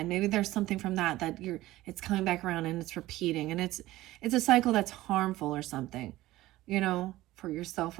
maybe there's something from that it's coming back around and it's repeating, and it's a cycle that's harmful or something, for yourself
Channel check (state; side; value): quieter; left; 16.8 dB